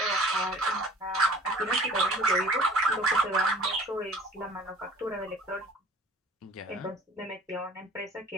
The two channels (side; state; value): both; normal; correlation 0.48